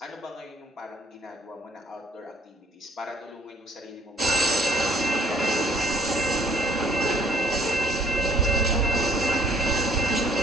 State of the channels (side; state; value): both; normal; correlation 0.59